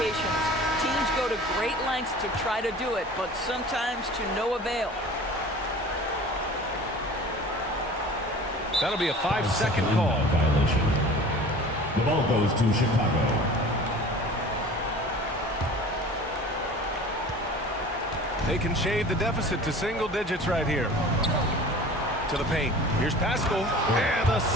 Teams go to great lengths to try to do it, but sometimes to no avail. That'll be a 5-second call. Violation. The ball goes to Chicago. They can shave the deficit to single digits right here. To the paint. Here's Pascal. And a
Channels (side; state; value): both; normal; correlation 0.42